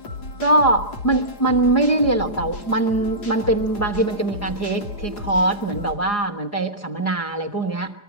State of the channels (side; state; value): right; late; 4.9 ms